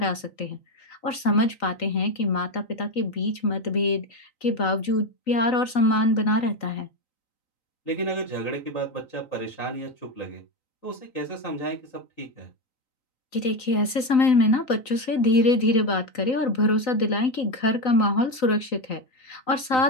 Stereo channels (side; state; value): right; late; 3.9 ms